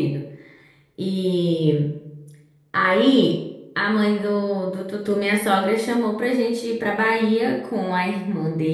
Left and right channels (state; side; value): identical; both; correlation 1.00